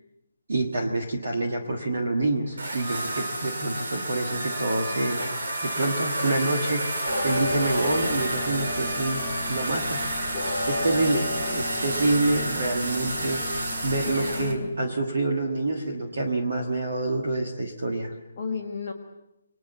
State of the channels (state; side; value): inverted; both; correlation -0.82